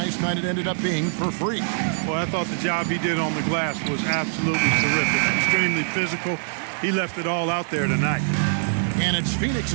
night it ended up being for free. Well, I thought the job he did on the glass was absolutely terrific. Extremely physical. He left it all out there tonight. And it's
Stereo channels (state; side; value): silent; left; 55 dB below the other